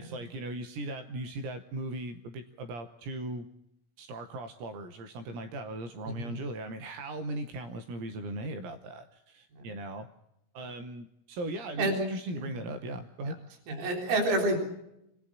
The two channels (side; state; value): left; late; 17 ms